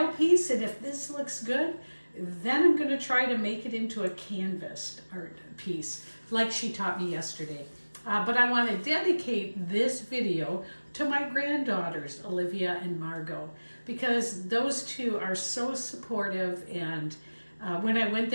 piece. And if this looks good, then I'm going to try to make it into a canvas art piece like she taught me yesterday. But I want to dedicate this video to my granddaughters, Olivia and Margot, because those two are so supportive. And when I went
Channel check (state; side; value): inverted; both; correlation -1.00